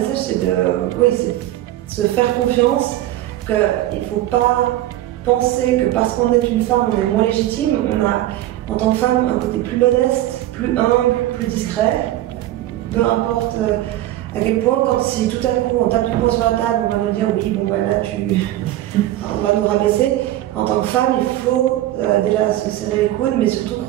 c'est de se faire confiance, qu'il ne faut pas penser que parce qu'on est une femme, on est moins légitime. On a, en tant que femme, un côté plus modeste, plus humble, plus discret. Peu importe à quel point, si tout à coup on tape du poing sur la table, on va nous dire oui, bon ben là on va nous rabaisser. En tant que femme, il faut déjà se serrer les coudes, mais surtout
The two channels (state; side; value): quieter; left; 14.5 dB